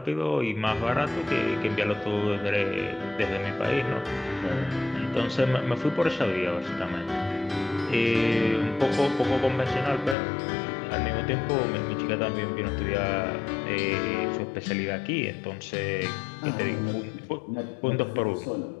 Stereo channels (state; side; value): drops out; right; at 10.2 s